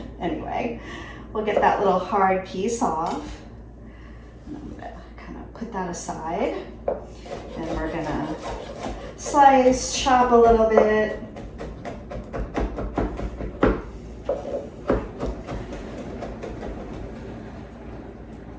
anyway, we'll get that little hard piece off. And I'm gonna kind of put that aside. And we're gonna slice, chop a little bit.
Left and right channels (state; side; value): identical; both; correlation 1.00